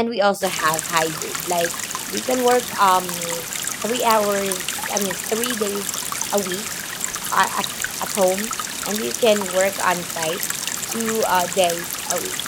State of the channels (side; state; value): both; identical; correlation 1.00